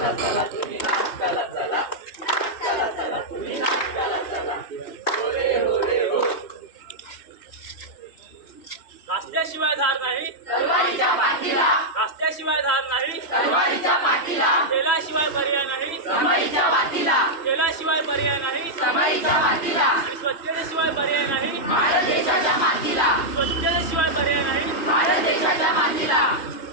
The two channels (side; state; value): right; late; 3.0 ms